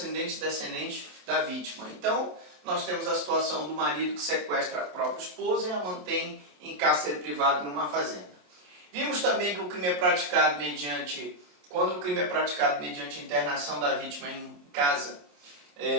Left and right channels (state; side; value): late; left; 28 ms